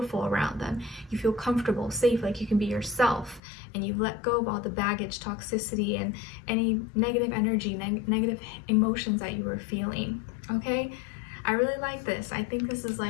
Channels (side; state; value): right; drops out; at 3.4 s